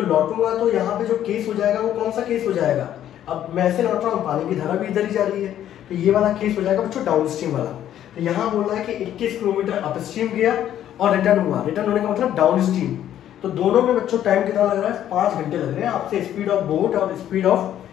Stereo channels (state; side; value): quieter; right; 11.2 dB